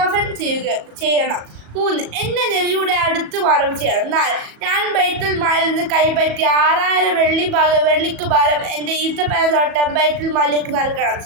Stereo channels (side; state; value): left; late; 37 ms